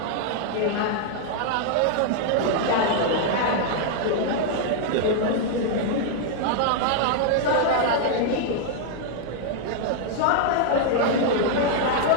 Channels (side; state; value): both; different; correlation -0.01